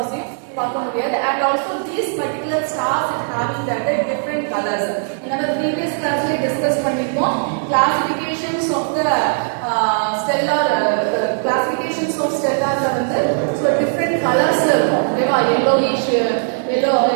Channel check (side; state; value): left; silent; 67 dB below the other